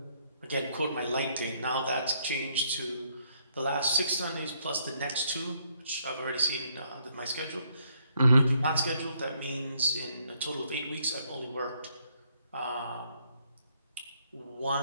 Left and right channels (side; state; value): both; inverted; correlation -0.70